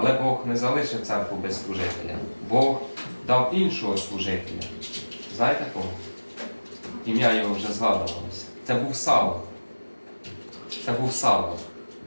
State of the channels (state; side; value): inverted; both; correlation -1.00